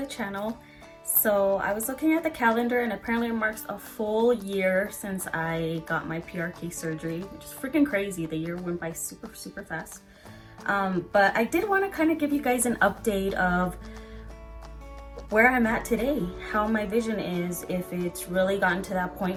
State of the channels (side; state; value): both; identical; correlation 1.00